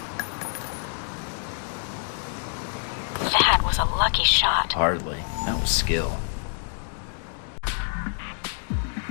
That was a lucky shot. Hardly. That was skill.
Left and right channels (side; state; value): right; silent; digital silence